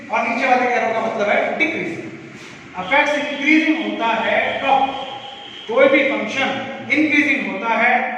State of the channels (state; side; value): identical; both; correlation 1.00